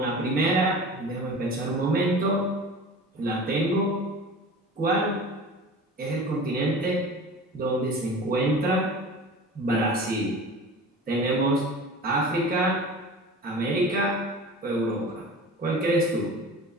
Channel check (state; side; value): normal; both; correlation 0.37